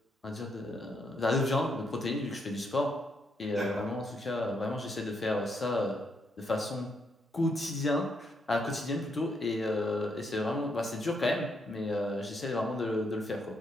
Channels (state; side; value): normal; both; correlation 0.77